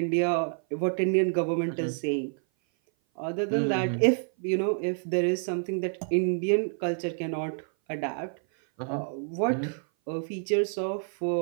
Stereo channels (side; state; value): left; silent; 57 dB below the other